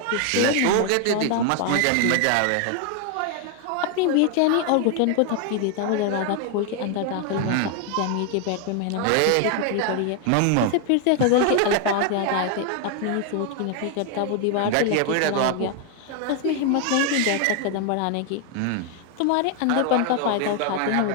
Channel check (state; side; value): different; both; correlation 0.00